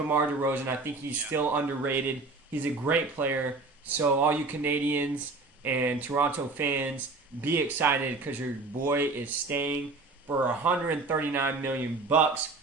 DeRozan. I think he's still underrated. He's a great player. So all you Canadians and Toronto fans, be excited because your boy is staying for $139 million.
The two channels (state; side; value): quieter; left; 3.6 dB